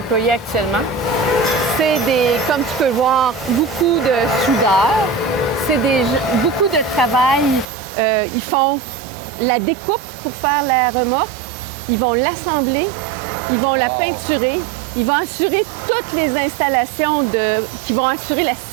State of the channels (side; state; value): left; drops out; at 7.7 s